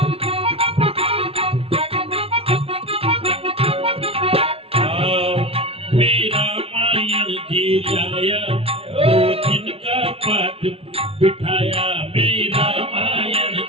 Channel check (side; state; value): left; late; 0.28 ms